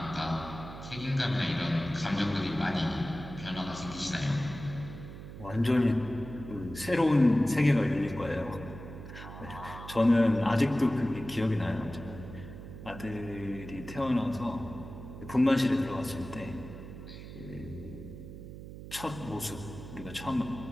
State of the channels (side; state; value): right; noise; hum, 12 dB below the sound